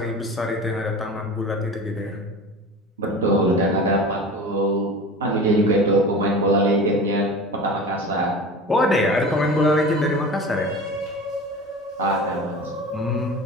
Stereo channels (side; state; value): both; normal; correlation 0.35